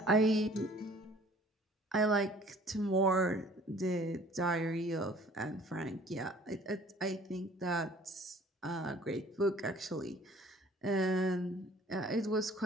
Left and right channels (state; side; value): normal; both; correlation 0.53